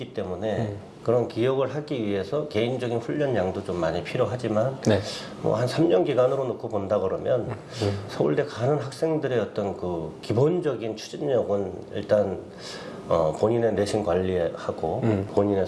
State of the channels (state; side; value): identical; both; correlation 1.00